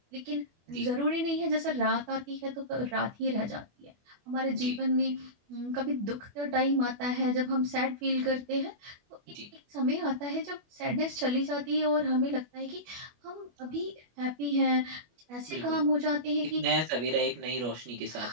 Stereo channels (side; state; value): left; late; 25 ms